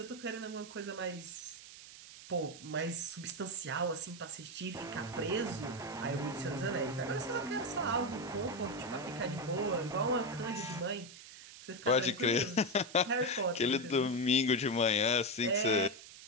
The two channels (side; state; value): right; noise; hiss, 16 dB below the sound